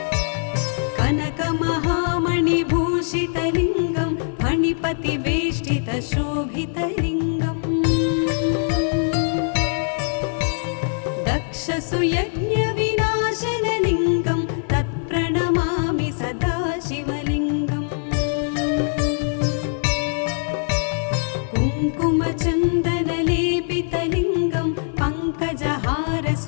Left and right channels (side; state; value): right; silent; 59 dB below the other